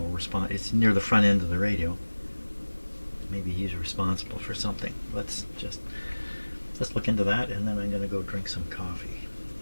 it's near the front end of the radio. Maybe he's responsible for something. Let's look into that, and then I'm going to go drink some coffee.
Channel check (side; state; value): both; inverted; correlation -1.00